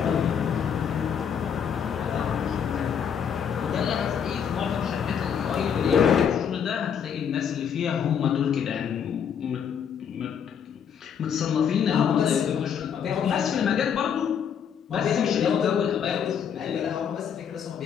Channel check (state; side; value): quieter; right; 7.8 dB